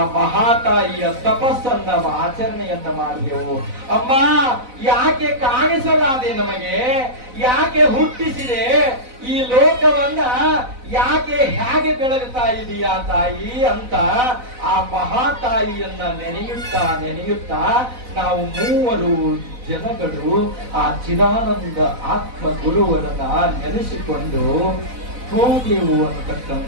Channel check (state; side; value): late; left; 4.0 ms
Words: ಮಹಾತಾಯಿಯ ತಪಸ್ಸನ್ನ ಆಚರಣೆಯನ್ನ ಮಾಡಿದೆವು. ಅಮ್ಮ ಯಾಕೆ ಕಾಣಿಸಲಾದೆ ನಮಗೆ, ಯಾಕೆ ಹುಟ್ಟಿಸಿದೆ ಈ ಲೋಕವನ್ನ, ಯಾಕೆ ಹೇಗೆ ಬೆಳಗುತ್ತಾ ಇದೀಯಾ ತಾಯಿ ಅಂತ ಆ ಮಹಾತಾಯಿಯನ್ನ ನೆನೆಯುತ್ತಾ ನಾವು ಮೂವರು ಜನಗಳು ಆ ಚಿದಾನಂದ ಆತ್ಮ ಗುರುವರನ್ನ ನೆನೆಸಿಕೊಂಡು ಹೋದೆವು